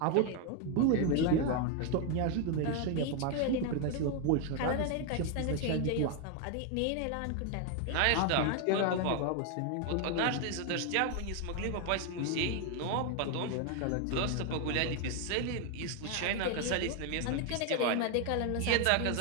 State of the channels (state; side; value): different; both; correlation 0.01